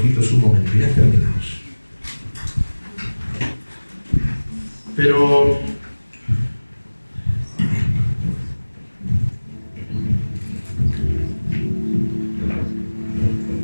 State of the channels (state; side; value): inverted; both; correlation -1.00